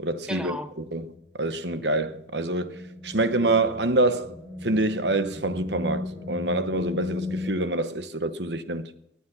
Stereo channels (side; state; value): both; normal; correlation 0.09